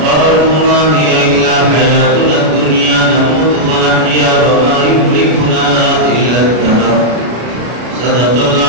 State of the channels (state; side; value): late; left; 33 ms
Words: ما هي إلا حياتنا الدنيا نموت ونحيا وما يهلكنا إلا الدهر صدق